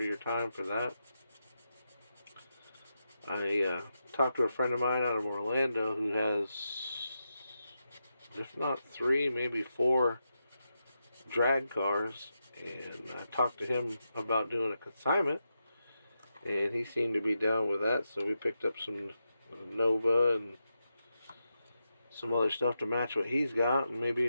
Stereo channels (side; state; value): both; inverted; correlation -0.87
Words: your time for that? I talked to a friend of mine out of Orlando who has, if not 3, maybe 4 drag cars, and I talked to him about doing a consignment, and he seemed to be down with that. So we picked up some Nova and some other stuff to match what he's got, and